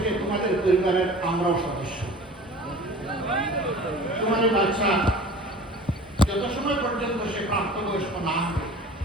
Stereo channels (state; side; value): normal; both; correlation 0.42